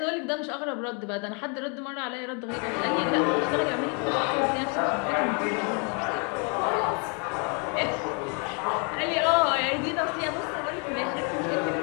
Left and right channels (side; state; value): right; quieter; 37.0 dB